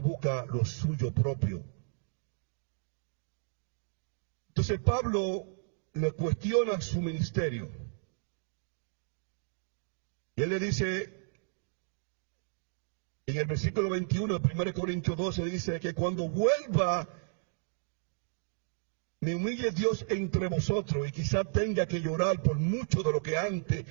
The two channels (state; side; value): silent; left; digital silence